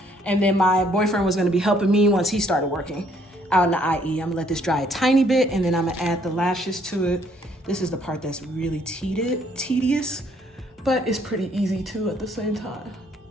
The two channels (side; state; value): both; normal; correlation 0.65